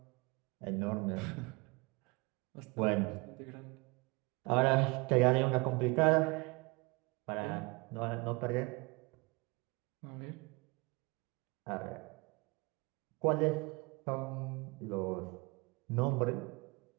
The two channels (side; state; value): left; quieter; 26.7 dB